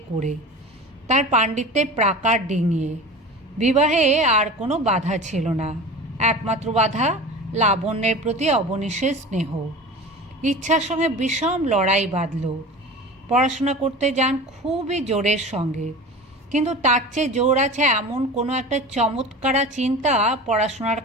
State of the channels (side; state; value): both; normal; correlation 0.34